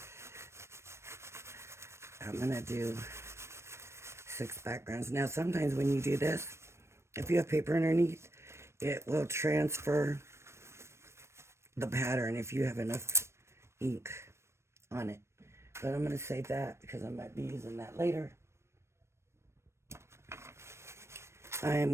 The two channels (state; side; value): late; left; 0.13 ms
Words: I'm going to do 6 backgrounds. Now, sometimes when you do this, if you have paper underneath, it will transfer the pattern if you have enough ink on it. But I'm going to save that because I might be using that later. I